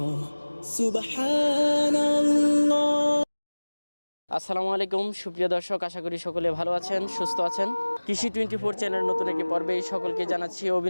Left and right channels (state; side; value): inverted; both; correlation -1.00